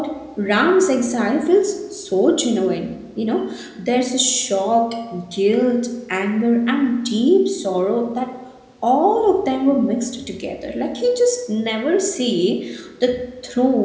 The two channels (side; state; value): both; identical; correlation 1.00